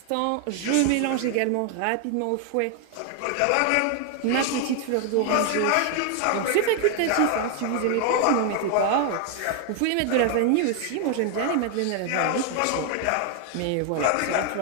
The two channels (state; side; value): different; both; correlation 0.00